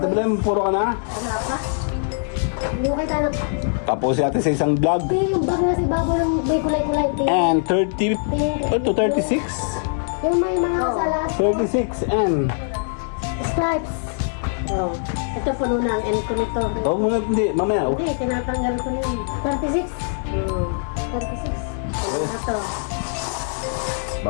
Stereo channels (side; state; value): right; silent; digital silence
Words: Belen, puro ka na? Wala pa. Hindi ko kita na. Tapos natin sa isang vlog. Yung bag na si Babo ng may kulay-kulay. And 30, to 36? Yung may mga salas. 36 and... Stripes. Oh. Ito puno na ang end ko nito. Oh, muna, hindi, mamaya. Oh. Hindi, tinatanggal ko na yun. 36. 36. Ano na to?